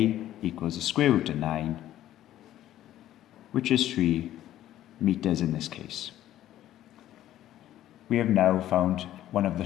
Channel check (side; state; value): right; quieter; 13.0 dB